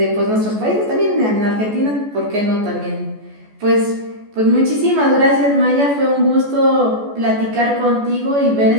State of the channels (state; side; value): late; left; 14 ms